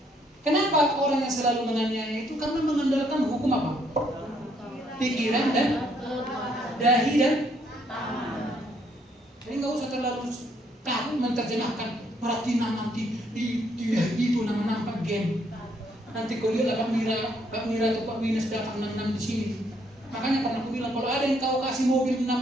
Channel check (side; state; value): both; normal; correlation 0.69